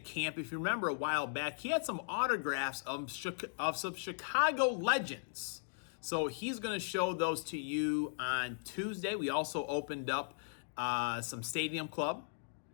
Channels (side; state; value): right; silent; digital silence